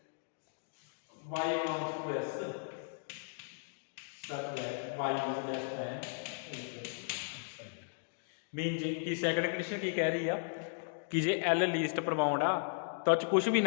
y belongs to s such that y is less than mean जी की सैकंड कंडीशन की कह रही है कि जे एल लीस्ट अपर बाउंड आ तो कुछ भी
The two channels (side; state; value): right; silent; digital silence